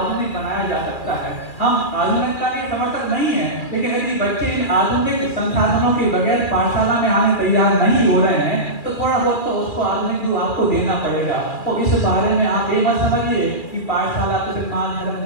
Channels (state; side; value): late; right; 2.4 ms